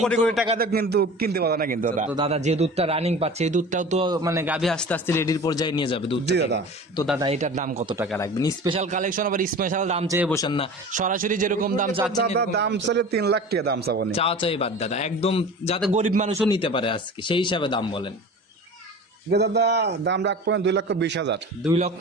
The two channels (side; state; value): both; normal; correlation 0.37